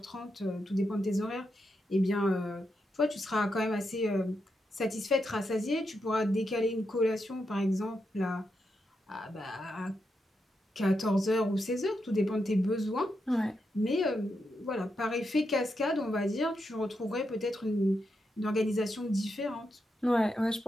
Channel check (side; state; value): both; normal; correlation 0.85